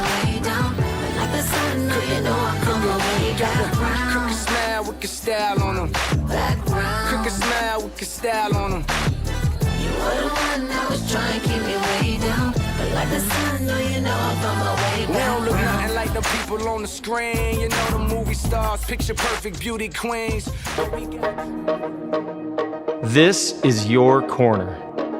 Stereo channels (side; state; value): both; identical; correlation 1.00